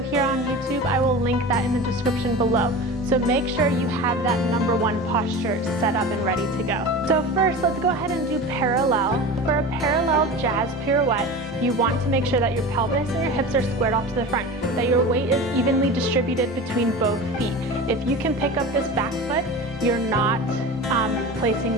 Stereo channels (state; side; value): normal; both; correlation 0.31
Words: on YouTube. I will link that in the description below. So make sure you have that #1 posture set up and ready to go. So first, let's go ahead and do parallel. For a parallel jazz pirouette, you want to make sure that your pelvis and your hips are squared off to the front, that your weight is evenly distributed between both feet. If you can pick up this back foot, you're not placing